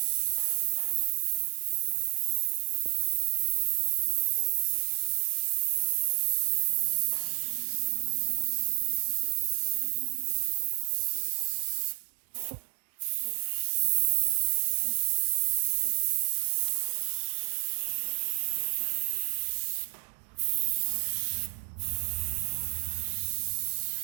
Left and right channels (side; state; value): left; silent; digital silence